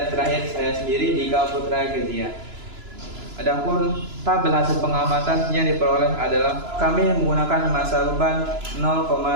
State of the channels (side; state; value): left; late; 2.9 ms